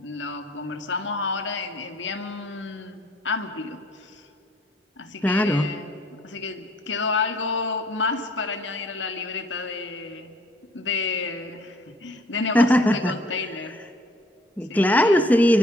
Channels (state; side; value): normal; both; correlation 0.59